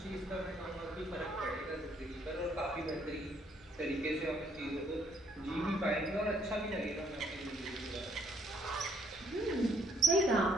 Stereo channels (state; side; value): normal; both; correlation 0.67